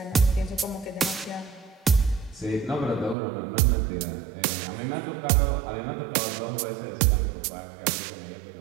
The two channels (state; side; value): drops out; left; at 3.2 s